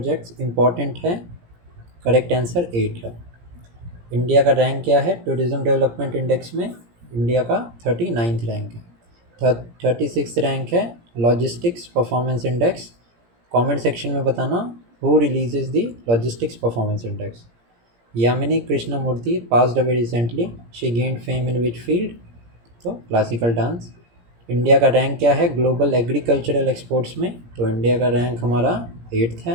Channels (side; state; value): left; late; 17 ms